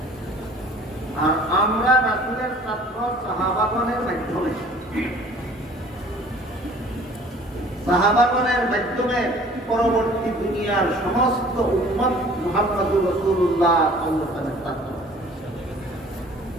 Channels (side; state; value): both; normal; correlation 0.51